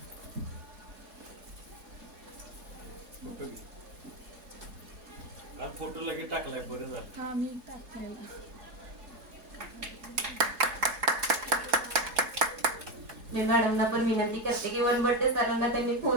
फोटो लगेच टाकलाय बरं झालं. हा मी टाकलेला. मी मॅडमना पण विनंती करते की वनबट्टे सरांना त्यांनी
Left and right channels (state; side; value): late; left; 4.7 ms